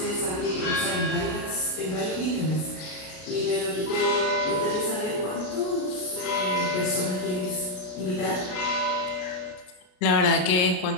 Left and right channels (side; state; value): right; late; 33 ms